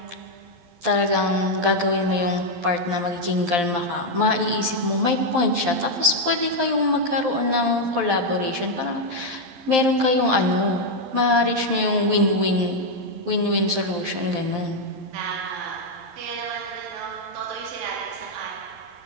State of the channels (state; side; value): late; left; 12 ms